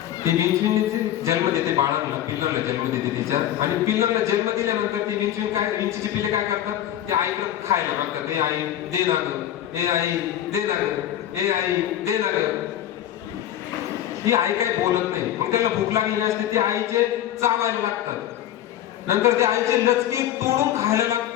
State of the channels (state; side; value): quieter; right; 11.7 dB